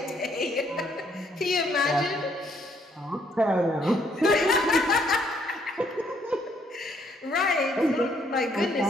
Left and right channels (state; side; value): normal; both; correlation 0.69